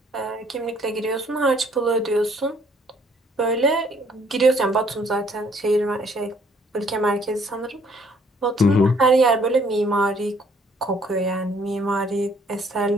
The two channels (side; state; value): both; normal; correlation 0.63